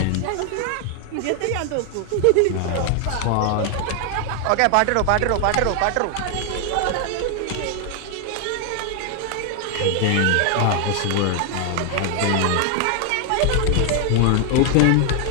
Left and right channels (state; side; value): different; both; correlation 0.00